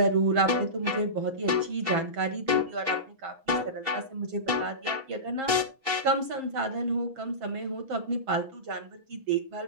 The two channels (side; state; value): left; late; 6.1 ms